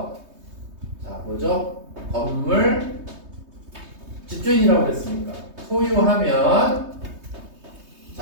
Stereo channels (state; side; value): late; left; 3.2 ms